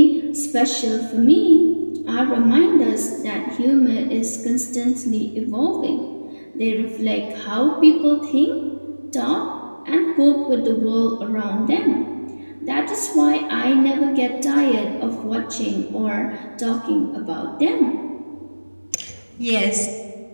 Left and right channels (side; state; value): both; inverted; correlation -1.00